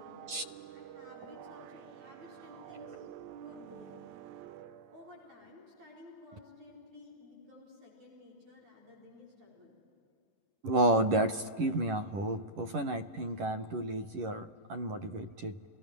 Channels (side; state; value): left; late; 11 ms